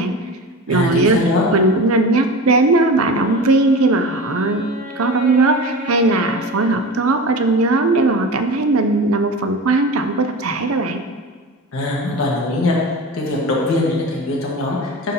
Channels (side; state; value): both; normal; correlation 0.31